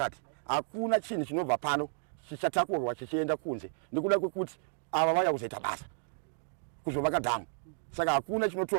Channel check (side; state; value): left; silent; digital silence